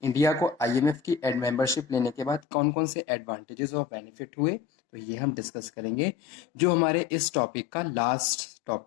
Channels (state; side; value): drops out; right; at 2.4 s